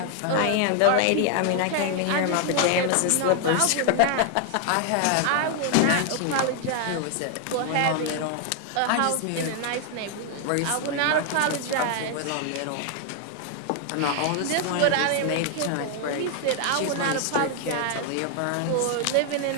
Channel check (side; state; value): both; different; correlation 0.00